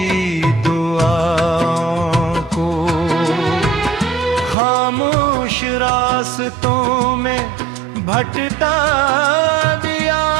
दुआओं को खामोश रास्तों में भटका दिया।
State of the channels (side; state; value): left; drops out; at 4.5 s